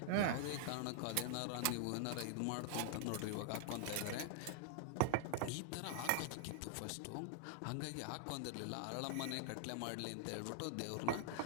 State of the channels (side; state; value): both; different; correlation -0.01